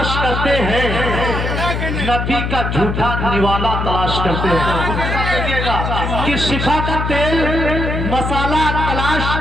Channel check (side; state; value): left; noise; hum, 2 dB below the sound